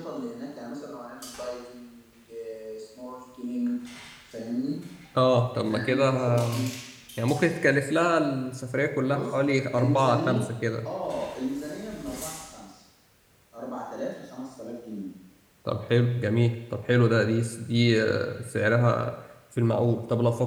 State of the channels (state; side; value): identical; both; correlation 1.00